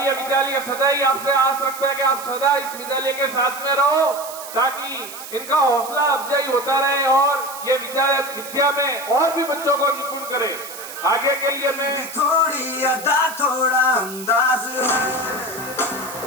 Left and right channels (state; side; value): noise; right; hiss, 13 dB below the sound